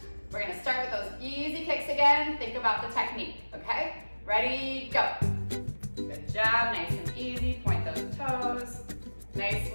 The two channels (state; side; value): inverted; both; correlation -1.00